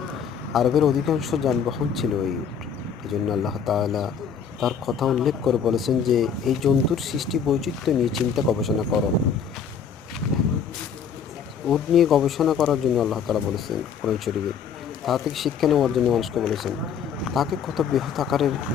আরবের অধিকাংশ যানবাহন ছিল এই উট। এই জন্য আল্লাহ তাআলা তার কথা উল্লেখ করে বলেছেন যে এই জন্তুর সৃষ্টি বৈচিত্র্য নিয়ে চিন্তা গবেষণা করো। উট নিয়ে গবেষণা করার জন্য আল্লাহ তাআলা বলেছেন কোরআন শরীফে। তা থেকে শিক্ষা নেওয়ার জন্য মানুষকে বলেছেন, তাকে কত বৃহৎ আকারের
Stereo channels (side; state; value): right; quieter; 7.0 dB